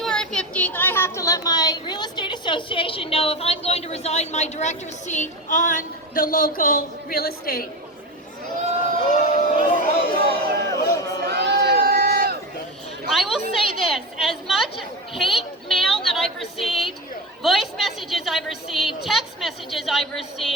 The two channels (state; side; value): normal; both; correlation 0.23